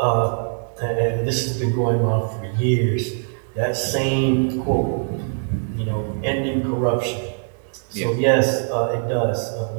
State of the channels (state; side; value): silent; left; digital silence